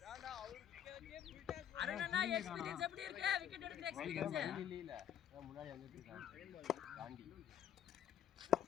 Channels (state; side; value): quieter; right; 9.6 dB